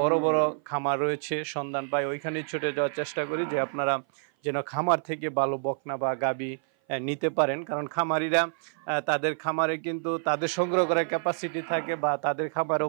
বড় খামার রয়েছে সন্ধান পাই, ওইখানে ছুটে যাওয়ার চেষ্টা করি যে আপনারা যেন খামার থেকে ভালো বকনা বা গাবি নিতে পারেন। কারণ খামারিরা তাদের খামারে কিন্তু তাদের সংগ্রহ করার ক্যাপাসিটি থাকে, বা তাদের খামারেও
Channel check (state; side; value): silent; left; 56 dB below the other